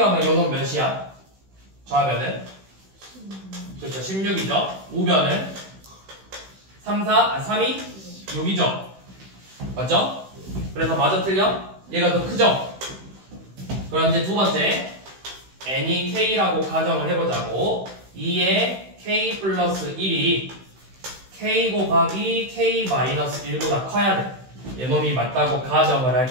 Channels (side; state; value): left; late; 16 ms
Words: 요놈 몇이야? 좌변은? 그쵸, 16이죠? 우변은? 3이 6이죠. 맞죠? 그래서 맞아 틀려? 얘가 더 크죠? 그럼 이제 두 번째 n이 k라고 가정을 해보자고. 2에 k 플러스 1이 k 곱하기 k 마이너스 1보다 커야 돼. 얘놈이 맞다고 가정을 할